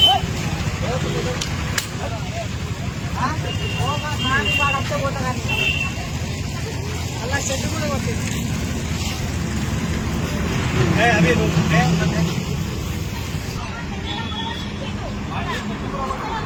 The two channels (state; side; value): identical; both; correlation 1.00